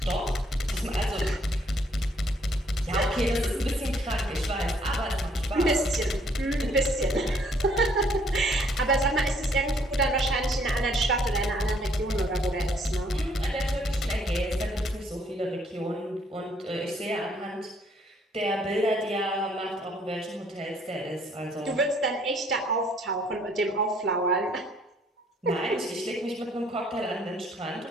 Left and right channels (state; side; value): normal; both; correlation 0.65